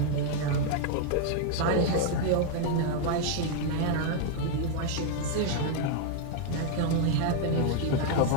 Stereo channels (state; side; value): different; both; correlation 0.00